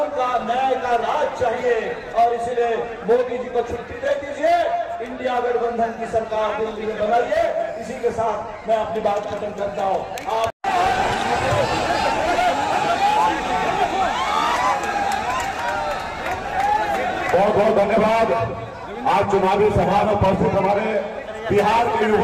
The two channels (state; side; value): identical; both; correlation 1.00